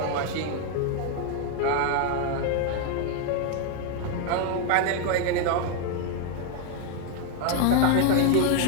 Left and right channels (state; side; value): different; both; correlation 0.00